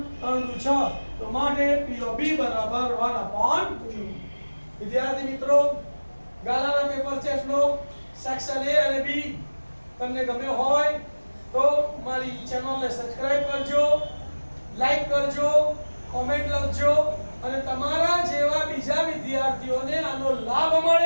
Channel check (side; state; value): both; inverted; correlation -1.00